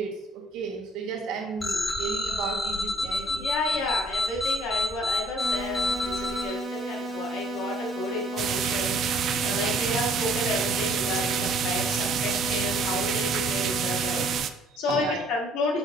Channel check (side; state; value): both; normal; correlation 0.59